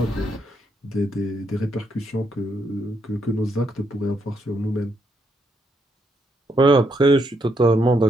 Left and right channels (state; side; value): normal; both; correlation 0.76